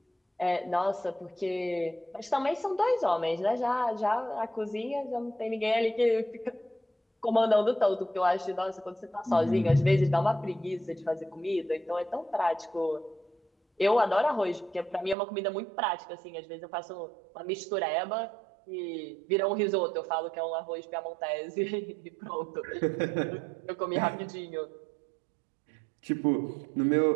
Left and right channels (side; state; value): left; drops out; at 15.2 s